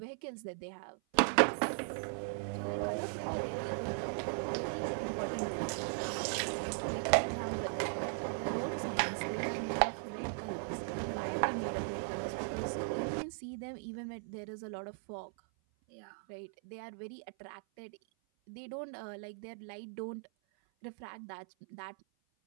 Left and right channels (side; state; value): left; silent; 53 dB below the other